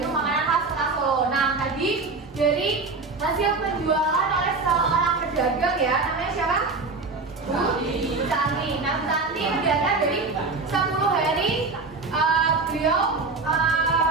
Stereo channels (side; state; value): left; quieter; 3.9 dB